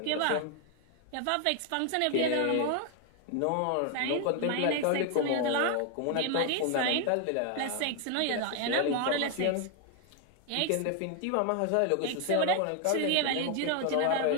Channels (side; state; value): both; different; correlation 0.00